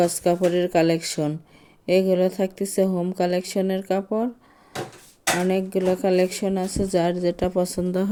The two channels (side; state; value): both; identical; correlation 1.00